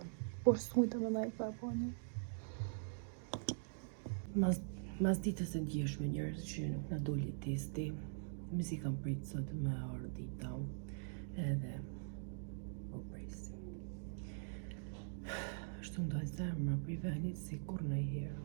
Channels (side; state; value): left; silent; digital silence